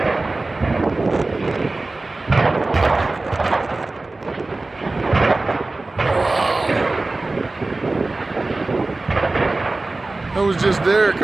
I was just there a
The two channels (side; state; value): left; quieter; 3.2 dB